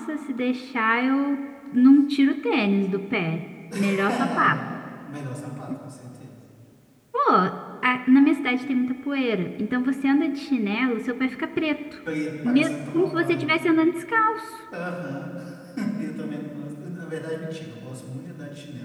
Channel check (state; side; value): identical; both; correlation 1.00